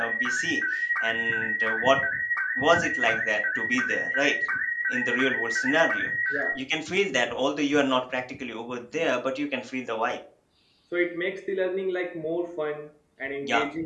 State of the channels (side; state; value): both; identical; correlation 1.00